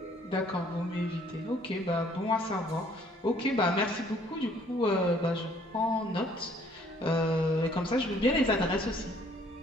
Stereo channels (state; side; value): normal; both; correlation 0.61